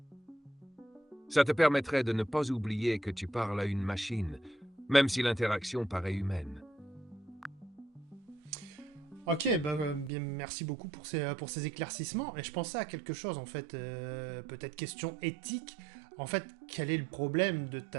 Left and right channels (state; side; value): drops out; left; at 10.1 s